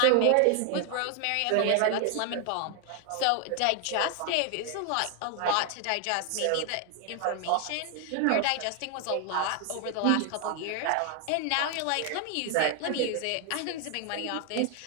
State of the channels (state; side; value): different; both; correlation 0.00